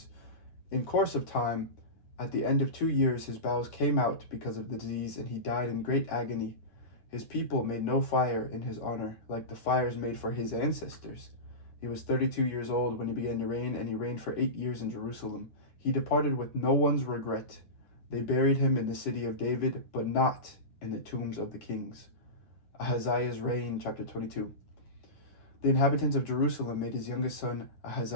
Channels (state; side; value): late; right; 9.9 ms